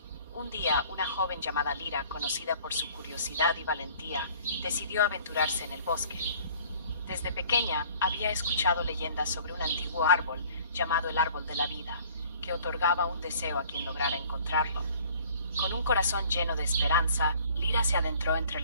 Un día, una joven llamada Lira, conocida por su curiosidad y valentía, decidió aventurarse en el bosque. Desde pequeña había escuchado leyendas sobre un antiguo árbol llamado el Árbol de la Vida, que otorgaba un deseo a quien lograra encontrarlo. Con un corazón lleno de esperanza, Lira se adentró entre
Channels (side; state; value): both; inverted; correlation -0.52